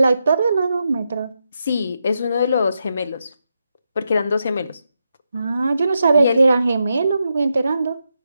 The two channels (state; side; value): inverted; both; correlation -0.85